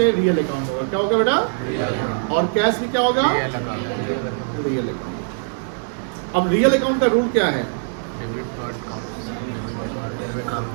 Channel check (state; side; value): silent; left; digital silence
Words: रियल अकाउंट होगा। क्या होगा बेटा? और कैश भी क्या होगा? Real account. अब रियल अकाउंट का रूल क्या है?